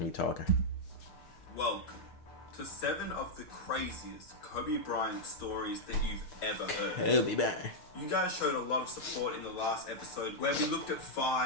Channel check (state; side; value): late; right; 6.6 ms